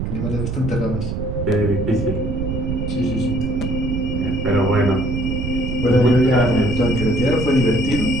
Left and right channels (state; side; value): noise; right; rumble, 3 dB below the sound